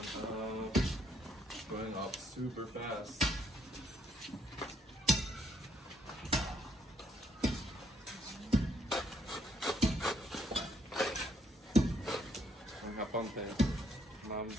going up super fast. Ang haponte. Ma'am,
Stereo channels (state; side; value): normal; both; correlation 0.70